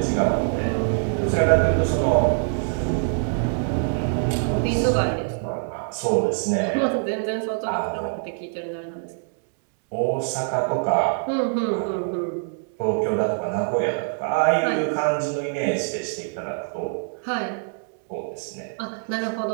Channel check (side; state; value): left; silent; digital silence